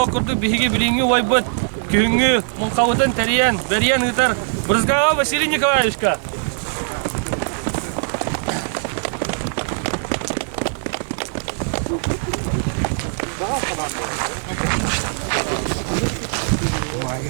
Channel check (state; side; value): silent; left; digital silence